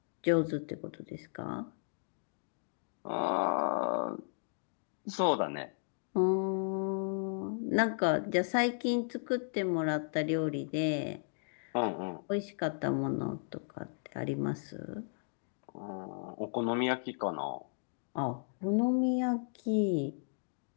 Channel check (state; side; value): silent; right; digital silence